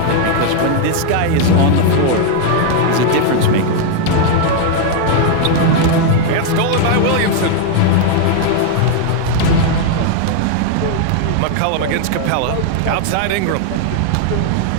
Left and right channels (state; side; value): different; both; correlation 0.00